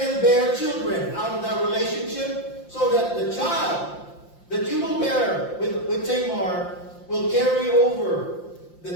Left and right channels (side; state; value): right; late; 5.7 ms